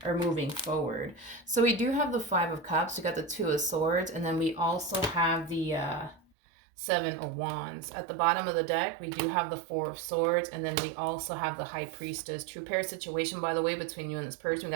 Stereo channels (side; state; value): left; drops out; at 6.2 s